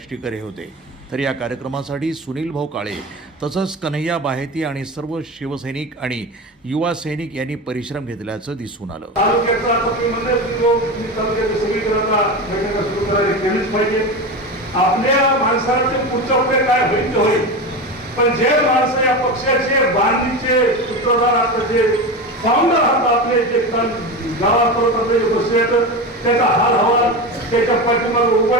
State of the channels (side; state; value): both; normal; correlation 0.23